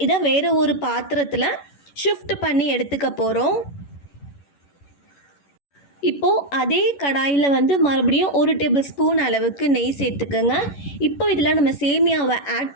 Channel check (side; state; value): right; late; 11 ms